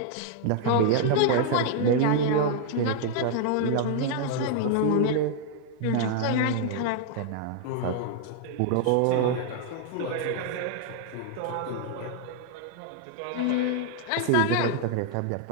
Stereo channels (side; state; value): both; different; correlation 0.00